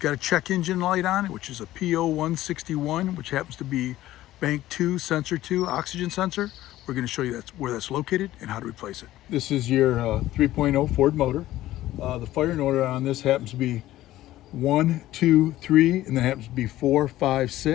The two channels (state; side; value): quieter; right; 14.9 dB